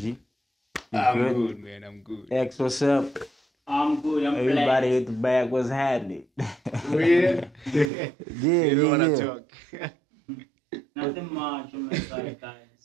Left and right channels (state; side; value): drops out; left; at 7.9 s